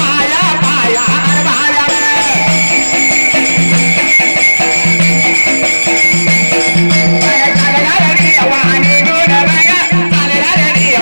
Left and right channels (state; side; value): inverted; both; correlation -1.00